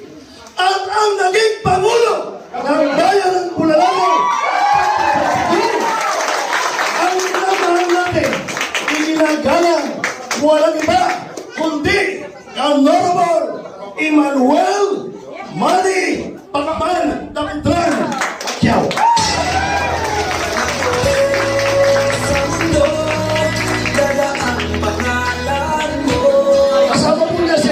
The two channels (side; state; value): both; identical; correlation 1.00